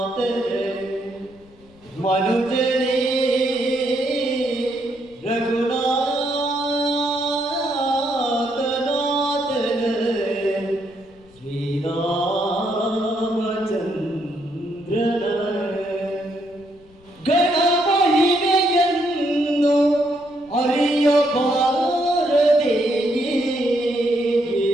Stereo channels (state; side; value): noise; left; rumble, 27 dB below the sound